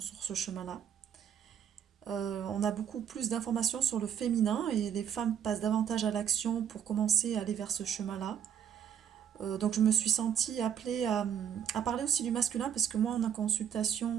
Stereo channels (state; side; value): quieter; left; 8.7 dB